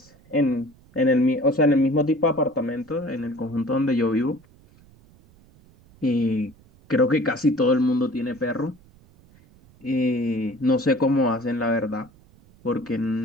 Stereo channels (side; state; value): right; noise; rumble, 27 dB below the sound